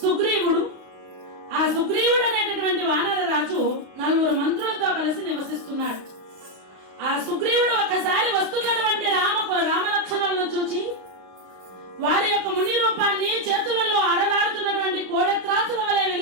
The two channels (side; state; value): left; late; 32 ms